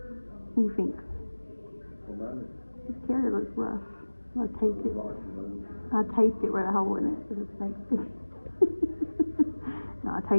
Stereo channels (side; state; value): both; inverted; correlation -1.00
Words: What do you think? This carrier looks rough. I taped it. I taped it right a hole in it. No, I